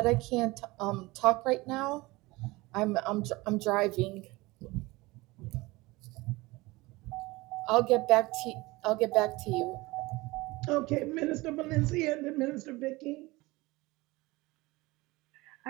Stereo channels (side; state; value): left; quieter; 21.8 dB